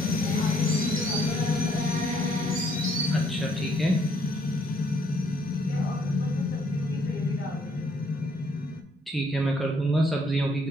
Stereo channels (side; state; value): both; normal; correlation 0.68